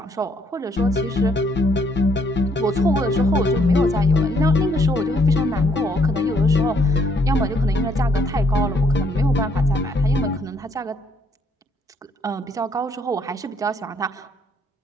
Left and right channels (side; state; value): both; normal; correlation 0.67